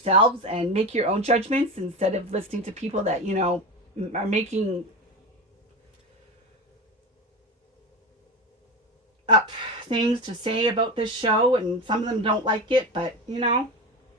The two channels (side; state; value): both; normal; correlation 0.24